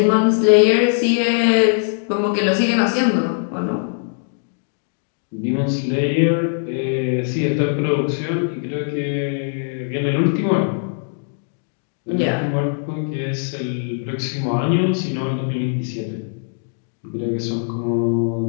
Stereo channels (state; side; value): silent; right; digital silence